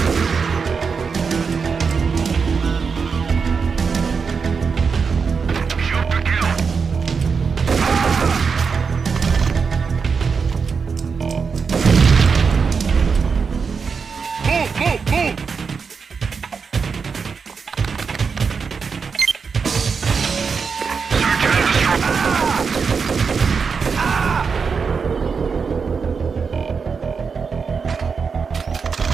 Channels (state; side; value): quieter; left; 5.5 dB